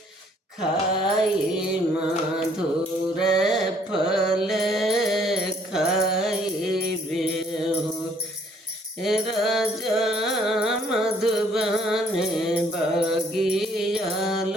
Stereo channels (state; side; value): normal; both; correlation 0.62